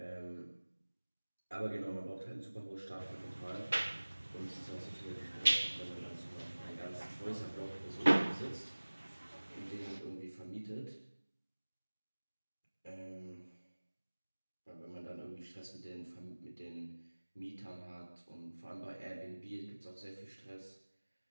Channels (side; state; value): both; inverted; correlation -1.00